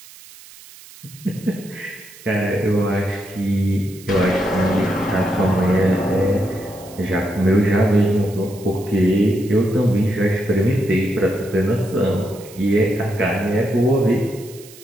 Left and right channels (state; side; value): noise; right; hiss, 20 dB below the sound